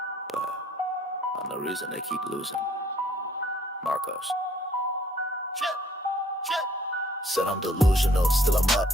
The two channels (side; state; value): both; normal; correlation 0.62